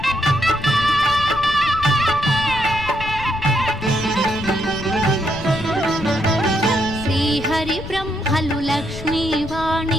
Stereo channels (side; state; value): left; noise; rumble, 11 dB below the sound